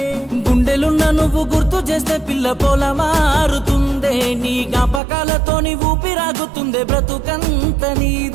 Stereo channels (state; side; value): drops out; left; at 5.0 s